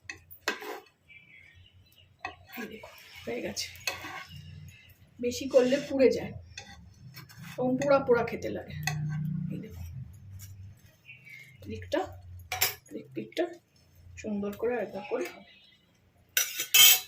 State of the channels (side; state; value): both; identical; correlation 1.00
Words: এই দেখো হয়ে গেছে। বেশি করলে পুড়ে যায়, এবং পোড়া পোড়া খেতে লাগে। এই দেখো দিকটা, দিকটা সুন্দর করে একবার করে হবে।